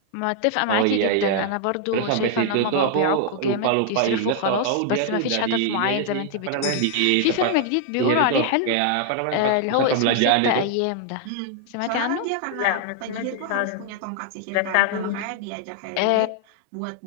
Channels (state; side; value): different; both; correlation 0.00